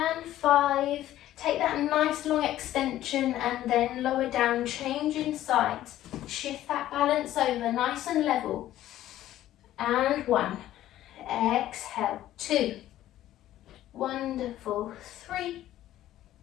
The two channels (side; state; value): right; quieter; 13.5 dB